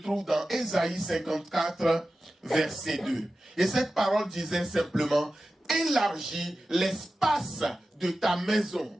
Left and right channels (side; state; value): both; normal; correlation 0.94